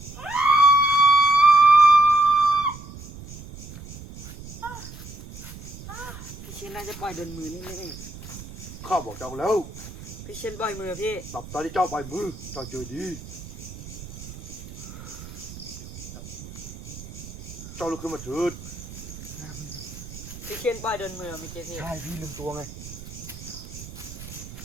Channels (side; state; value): right; noise; rumble, 13 dB below the sound